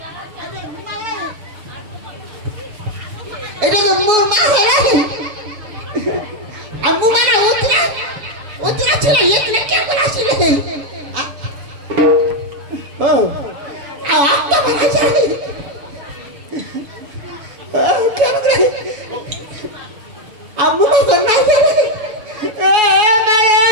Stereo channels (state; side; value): late; left; 7.1 ms